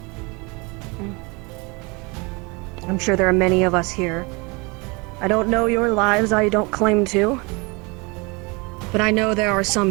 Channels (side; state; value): left; quieter; 28.0 dB